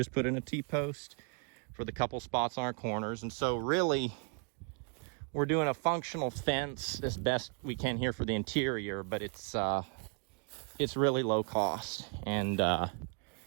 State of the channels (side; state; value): left; quieter; 38.3 dB